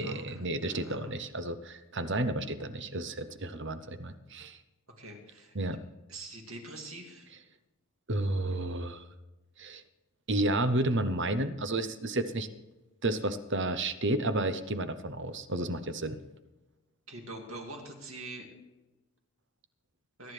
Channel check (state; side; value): normal; both; correlation 0.32